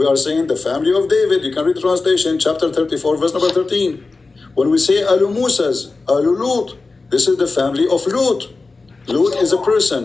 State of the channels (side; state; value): right; quieter; 3.8 dB